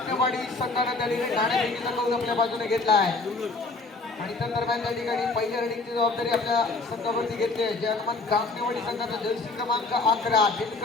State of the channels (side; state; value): right; quieter; 3.6 dB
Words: संघाने त्या ठिकाणी नाणेफेकीचा कौल आपल्या बाजूने घेतला आहे आणि त्या दरम्यान त्या ठिकाणी पहिल्या रेडिंगची जबाबदारी आपल्या संघावरती घेतली आहे. जय हनुमान काकणेवाडी संघाचा जर्सी क्रमांक 11